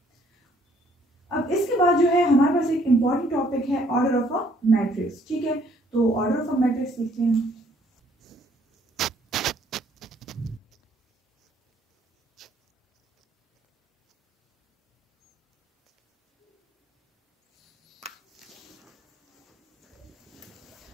अब इसके बाद जो है हमारे पास एक इम्पॉर्टेंट टॉपिक है ऑर्डर ऑफ अ मैट्रिक्स। ठीक है, तो ऑर्डर ऑफ अ मैट्रिक्स लिखते हैं।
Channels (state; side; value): normal; both; correlation 0.64